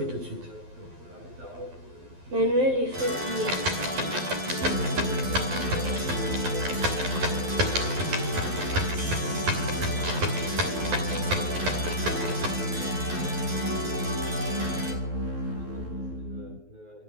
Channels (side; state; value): left; late; 12 ms